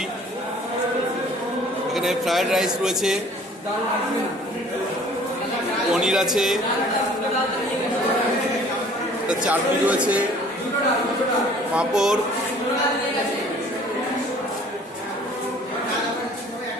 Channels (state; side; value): normal; both; correlation 0.52